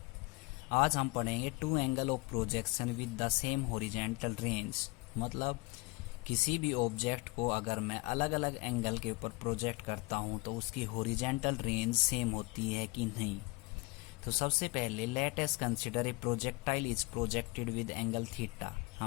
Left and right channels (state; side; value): quieter; right; 25.1 dB